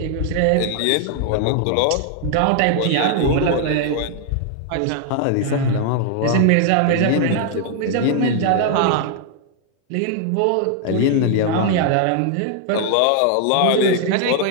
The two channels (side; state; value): both; different; correlation 0.00